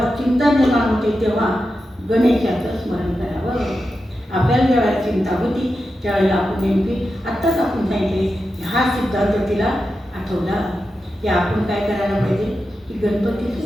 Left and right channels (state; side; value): normal; both; correlation 0.90